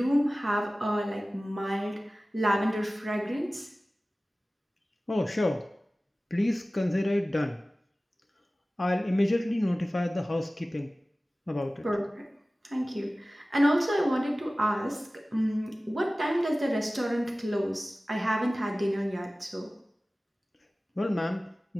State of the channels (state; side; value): normal; both; correlation 0.97